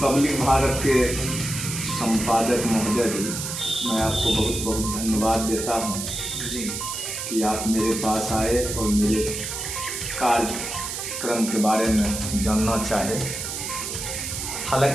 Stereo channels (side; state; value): right; noise; hiss, 5 dB below the sound